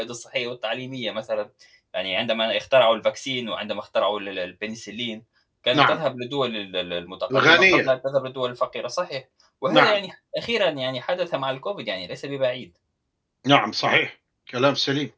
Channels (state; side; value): identical; both; correlation 1.00